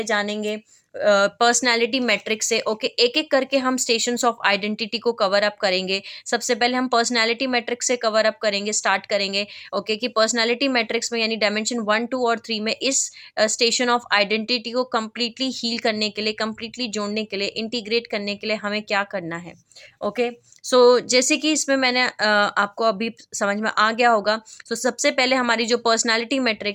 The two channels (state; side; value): identical; both; correlation 1.00